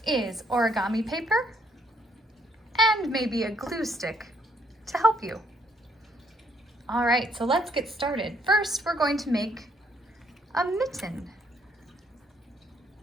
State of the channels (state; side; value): normal; both; correlation 0.70